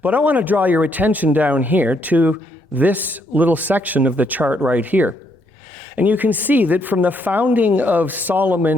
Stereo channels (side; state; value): both; normal; correlation 0.73